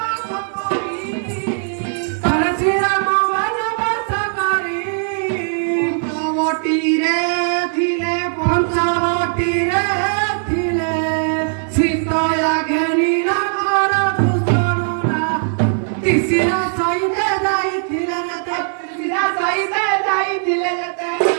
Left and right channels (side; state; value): left; silent; digital silence